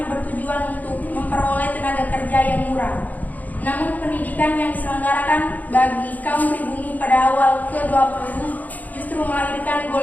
bertujuan untuk memperoleh tenaga kerja yang murah. Namun pendidikan yang diselenggarakan bagi kaum pribumi pada awal ke-20 justru melahirkan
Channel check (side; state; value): right; late; 0.079 ms